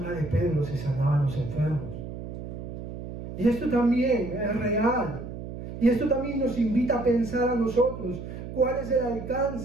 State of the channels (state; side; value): noise; right; hum, 9 dB below the sound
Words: de Pedro se sanaban los enfermos. Y esto también es real. Y esto también nos invita a pensar a nosotros, ¿cuál es el